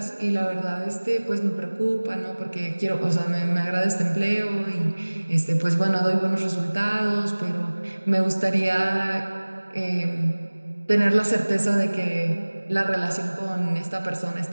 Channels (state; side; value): inverted; both; correlation -1.00